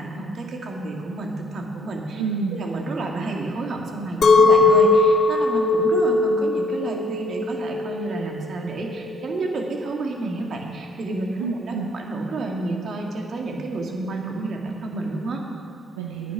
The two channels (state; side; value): normal; both; correlation 0.61